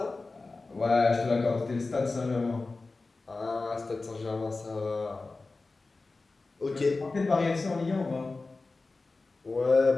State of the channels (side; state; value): right; quieter; 3.6 dB